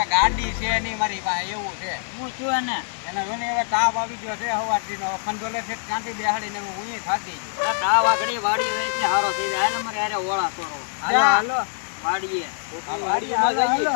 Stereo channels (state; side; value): silent; right; digital silence